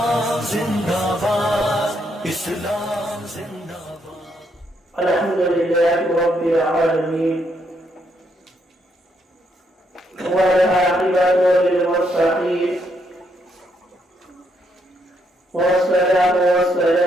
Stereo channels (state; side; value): normal; both; correlation 0.75